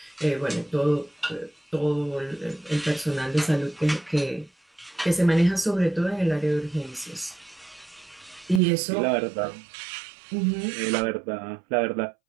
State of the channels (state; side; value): drops out; left; at 8.6 s